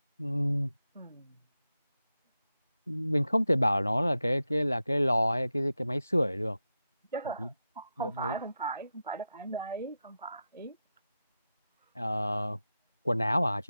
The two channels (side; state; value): both; inverted; correlation -0.91